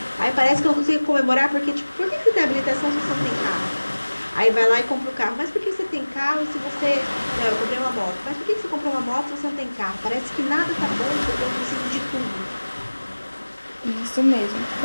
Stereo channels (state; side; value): inverted; both; correlation -1.00